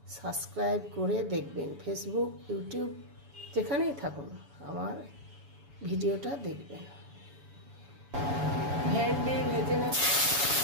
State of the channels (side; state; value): left; late; 7.0 ms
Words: সাবস্ক্রাইব করে দেখবেন। ফেসবুক, ইউটিউব যেখানেই থাকুন আমার ভিডিওটা দেখবেন। ভেন্ডি ভেজে নেব।